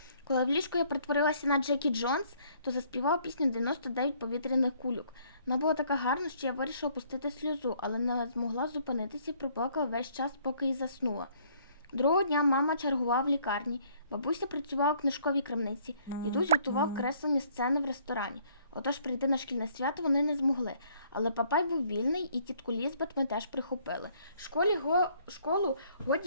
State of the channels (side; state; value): both; inverted; correlation -0.63